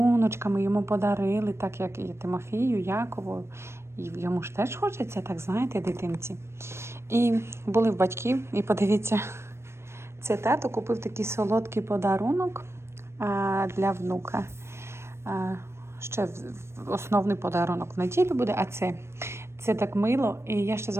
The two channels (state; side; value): late; left; 0.13 ms